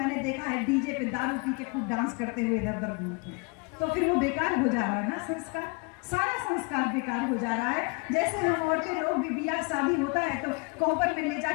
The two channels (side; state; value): right; quieter; 30.9 dB